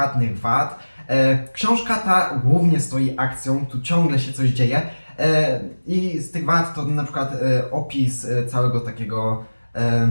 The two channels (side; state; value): both; inverted; correlation -1.00